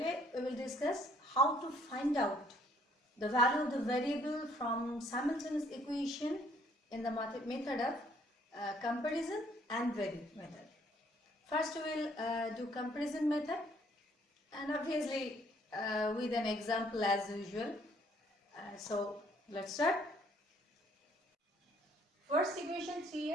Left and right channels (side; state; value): both; normal; correlation 0.63